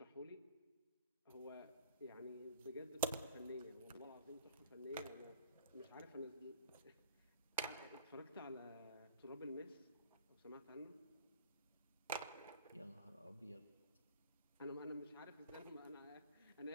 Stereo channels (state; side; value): inverted; both; correlation -0.46